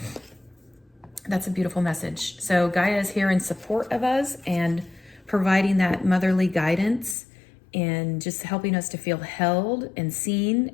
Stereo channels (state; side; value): drops out; right; at 7.2 s